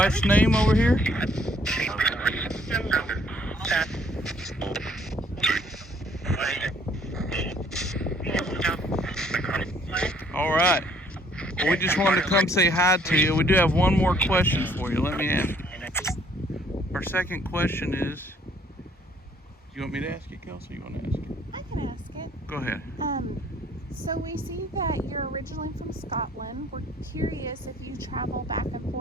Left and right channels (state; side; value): normal; both; correlation 0.62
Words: name over here? All right. Well, we just wanted to come say hi to you. We do have one more question for you. Let me ask. Our second question is, do you want me to ask it, Kelsey? You want to ask it? I can ask it. Go ahead. So we see that you're originally from Scotland. We're curious if you travel back and